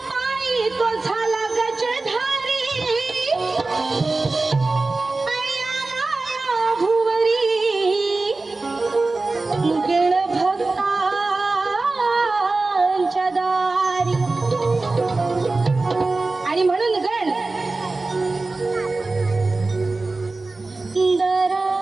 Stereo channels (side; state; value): left; quieter; 3.4 dB